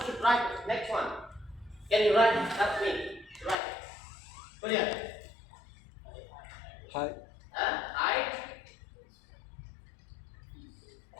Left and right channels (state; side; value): drops out; right; at 3.6 s